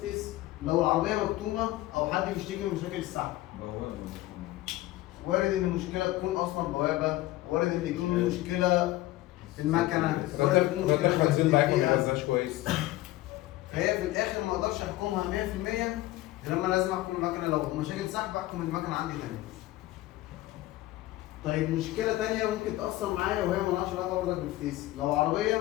لو العربيه مكتومه او حد بيشتكي من مشاكل السحب، وارد ان المشكله تكون اصلا بوابه، وارد ان يكون مشكله في المكنه، وارد ان يكون رد مشكله البنزين ضعيف ما الدقيقة. بيغذاش كويس. فهي في الاخر ما اقدرش احكمها 100%، لما لازم احكم المكنه. لو مشاكل سحب احكم المكنه عندي تاني. طيب مشكله تانية ممكن تاثر معايا وهي مالهاش علاقه برضك بالفتيس. لو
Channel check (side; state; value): right; quieter; 16.9 dB